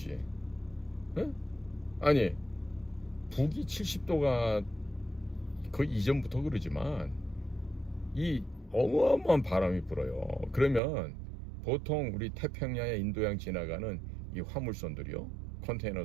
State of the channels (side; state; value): left; drops out; at 10.8 s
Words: 응? 아니 북이 70도가 거의 이전부터 그러지만 이 어마어마한 바람이 불어요. 그러면 보통 우리 태평양에 인도양 지나가는 이 화물선들이요, 컨테이너